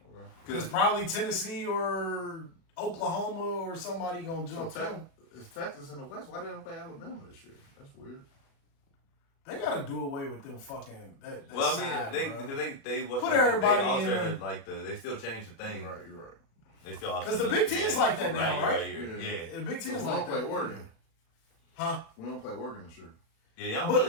Okay. because probably Tennessee or Oklahoma or somebody gonna So jump them. it's Texas in the West. Why they don't play Alabama this year? That's weird. They gotta do away with them fucking. That well, I side, mean, bro. they Put everybody in there. they still changed the thing. You're right. They still altered Because the Big Ten's like that now, right? Yeah. The Big Ten's We like don't play that. Oregon. Huh? We don't play Oregon this year. Yeah, y'all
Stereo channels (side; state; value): right; late; 36 ms